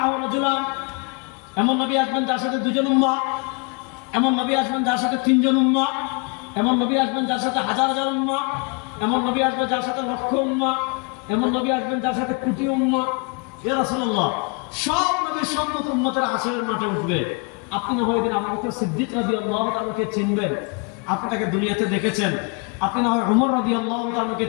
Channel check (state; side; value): quieter; right; 32.4 dB